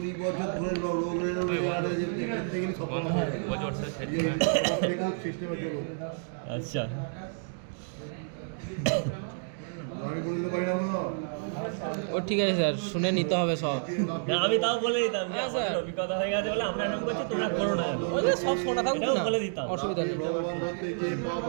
বছর ধরে রোগ আরে যে দেখতে গেলে সব সিস্টেমে চলো। আচ্ছা, আমি বলে দিতে পারি না মনে হয়। ও ঠিক আছে স্যার, শুনে নিতে হবে সব। না আমি তাও বলে দিতাম, হ্যাঁ, স্যার। আমাদের অভিজ্ঞতা হয়ে গেছে বলে আমরা এরকম করছি, তোমরা করো না, ওই যে সব শোনা থাকুক এটাও না, বলে দিতাম। অসুবিধা নেই। ভগবান ধরতে গিয়ে পা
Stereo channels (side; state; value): left; silent; digital silence